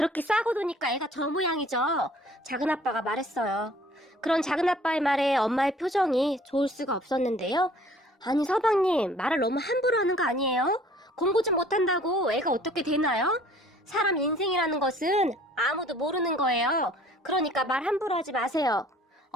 싸고 도니까 애가 저 모양이죠. 작은아빠가 말했어요. 그런 작은아빠의 말에 엄마의 표정이 좋을 수가 없었는데요. 아니 서방님, 말을 너무 함부로 하는 거 아니에요? 공부 좀 못한다고 애가 어떻게 되나요? 사람 인생이라는 것은 아무도 모르는 거예요. 그러니까 말 함부로 하지 마세요.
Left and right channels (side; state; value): both; normal; correlation 0.54